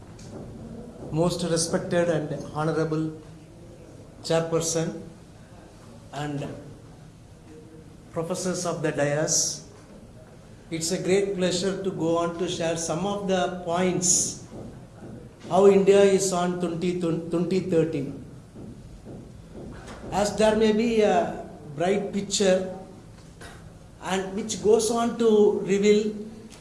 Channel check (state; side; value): identical; both; correlation 1.00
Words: Most respected and honorable chairperson and professors of the dais, it's a great pleasure to go on to share some of the points how India is on 2030. As there may be a bright picture and which goes on to reveal